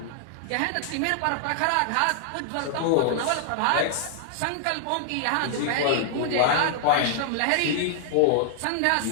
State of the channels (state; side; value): different; both; correlation -0.01